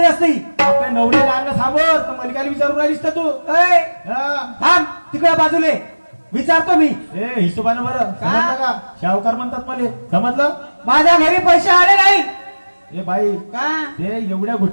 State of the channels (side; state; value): both; inverted; correlation -1.00